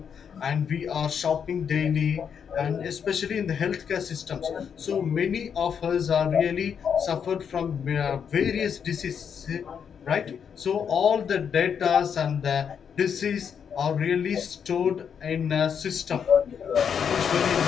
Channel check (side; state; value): right; quieter; 7.4 dB